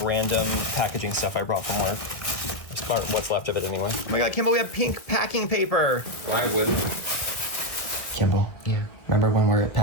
random packaging stuff I brought from work. What's left of it anyway. Oh my god, Kimball, we have pink packing paper. Why wouldn't? Kimball. Yeah. Remember when we were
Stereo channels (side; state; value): right; late; 1.5 ms